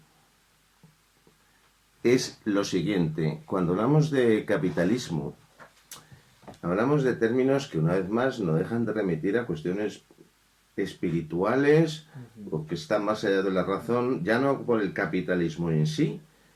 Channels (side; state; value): both; identical; correlation 1.00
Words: es lo siguiente. Cuando hablamos de capitalismo, hablamos de términos que una vez más no dejan de remitir a cuestiones espirituales o que están más allá de la razón, ya no por el capitalismo en sí,